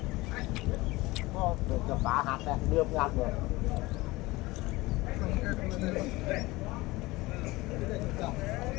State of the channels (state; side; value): quieter; right; 20.9 dB